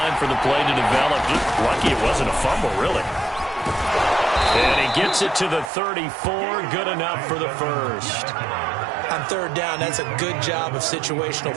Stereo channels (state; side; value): drops out; left; at 5.7 s